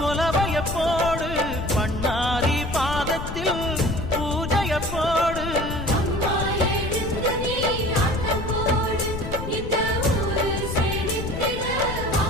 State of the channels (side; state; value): left; noise; rumble, 7 dB below the sound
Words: போடு, பண்ணாரி பாதத்தில் பூஜைய போடு,